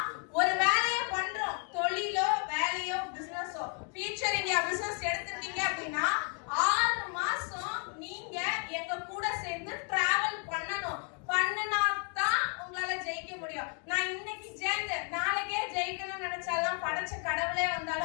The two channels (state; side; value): quieter; right; 39.0 dB